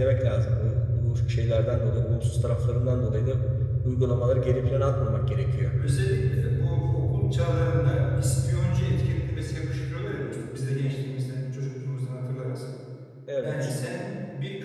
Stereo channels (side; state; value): both; identical; correlation 1.00